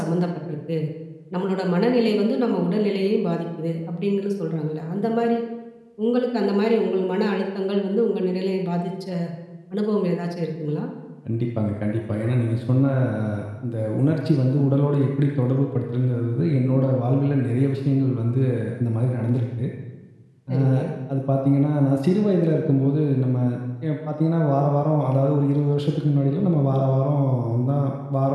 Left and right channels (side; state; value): both; identical; correlation 1.00